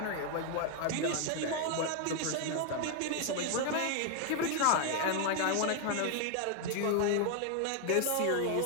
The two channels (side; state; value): both; different; correlation 0.00